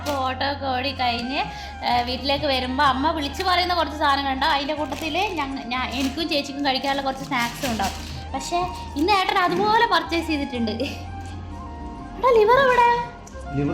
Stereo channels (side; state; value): both; identical; correlation 1.00